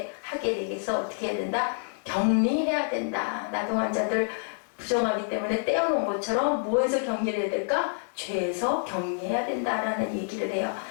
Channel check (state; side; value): silent; right; digital silence